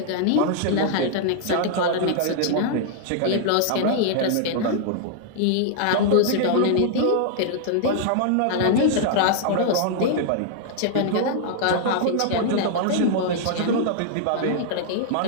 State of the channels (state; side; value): different; both; correlation -0.01